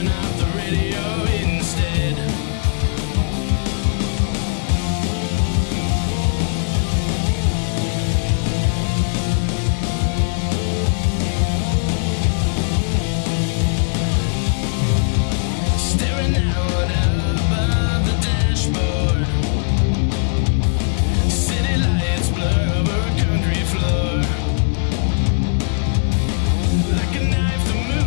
out the radio instead. Staring out above the dashboard, city lights blur over a concrete floor. Like a knife, the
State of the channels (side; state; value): right; silent; digital silence